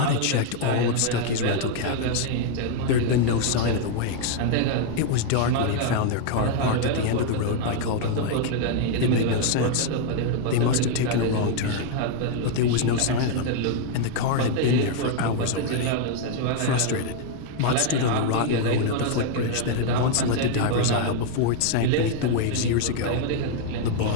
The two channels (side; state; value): both; different; correlation 0.00